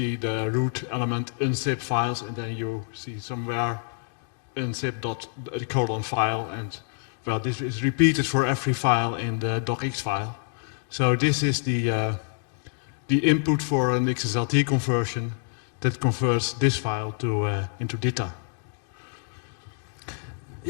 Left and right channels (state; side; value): silent; right; digital silence